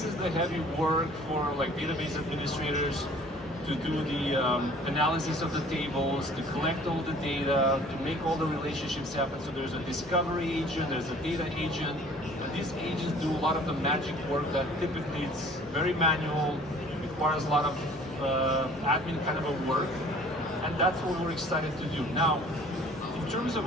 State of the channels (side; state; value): both; normal; correlation 0.51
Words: the heavy work for like database administrators to do the analysis of the tables, to collect all the data, to make all the relationships happen. So there's a discovery agent, there's a data agent, and these agents do a lot of the magic work that typically it's very manual, requires a lot of admin kind of a work, and that's what we're excited to do. Now, in terms of